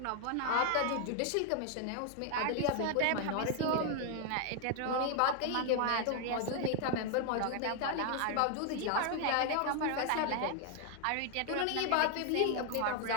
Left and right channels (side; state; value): both; different; correlation 0.00